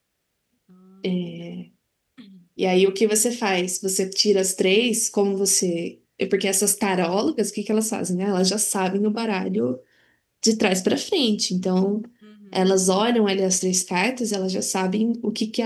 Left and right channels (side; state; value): both; identical; correlation 1.00